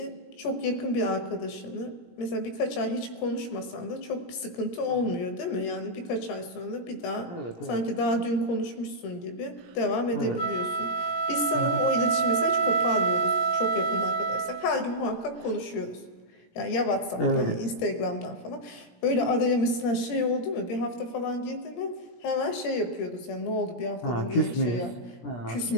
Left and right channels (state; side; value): late; right; 17 ms